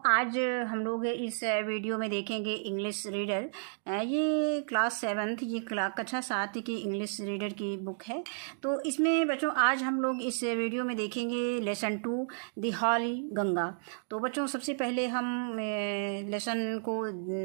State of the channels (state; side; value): silent; left; digital silence